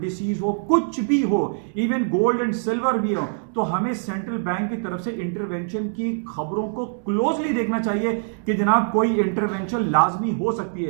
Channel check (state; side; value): silent; left; digital silence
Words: हो, कुछ भी हो, इवन गोल्ड एंड सिल्वर भी हो, तो हमें सेंट्रल बैंक की तरफ से इंटरवेंशन की खबरों को क्लोजली देखना चाहिए कि जनाब कोई इंटरवेंशन लाजमी हो सकती